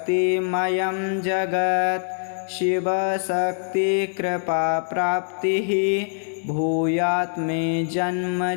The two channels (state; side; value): silent; right; digital silence